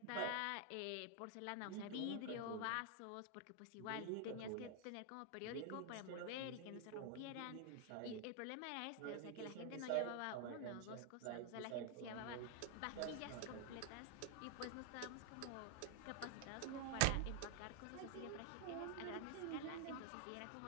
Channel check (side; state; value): both; different; correlation 0.00